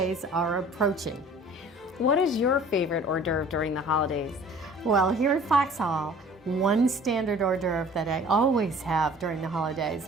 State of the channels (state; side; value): normal; both; correlation 0.49